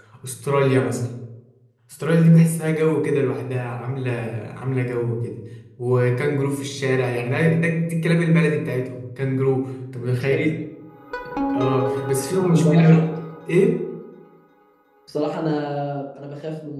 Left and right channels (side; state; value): both; identical; correlation 1.00